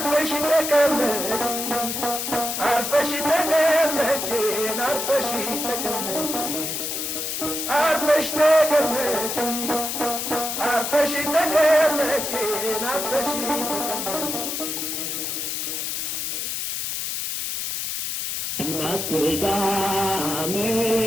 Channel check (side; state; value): left; noise; hiss, 3 dB below the sound